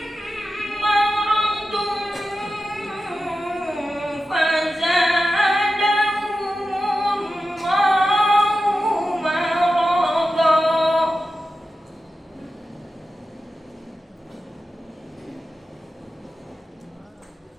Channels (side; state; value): both; normal; correlation 0.92